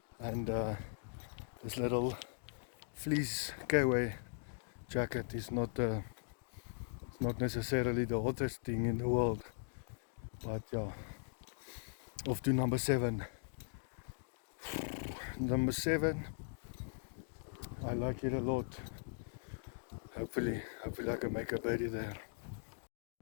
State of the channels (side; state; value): right; silent; digital silence